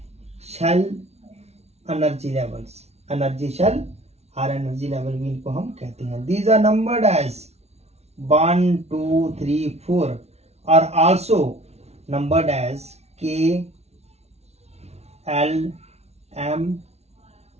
shell energy levels. Energy shell और energy level भी इनको हम कहते हैं. These are numbered as 1, 2, 3, 4 are also numbered as K, L, M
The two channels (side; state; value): left; late; 0.31 ms